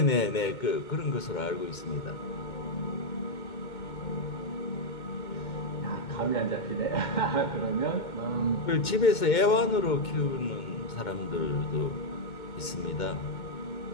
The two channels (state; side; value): late; right; 2.2 ms